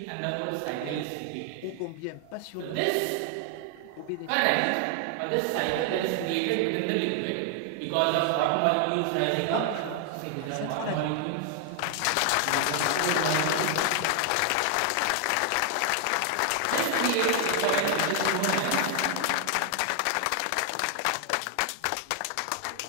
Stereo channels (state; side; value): different; both; correlation 0.00